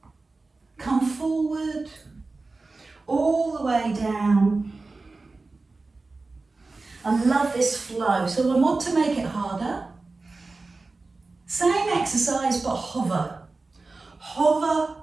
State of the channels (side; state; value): left; quieter; 3.6 dB